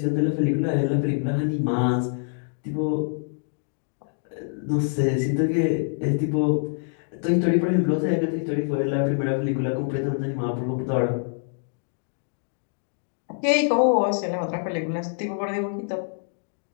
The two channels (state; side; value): silent; right; digital silence